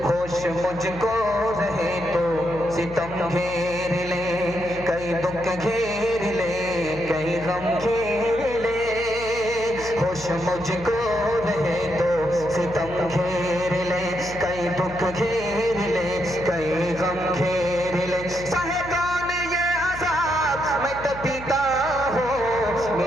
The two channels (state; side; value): noise; left; hum, 14 dB below the sound